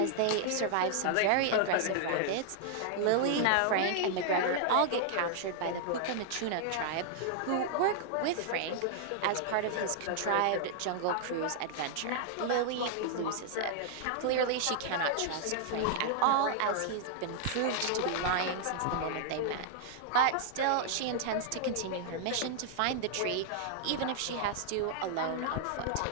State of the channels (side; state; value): both; different; correlation -0.01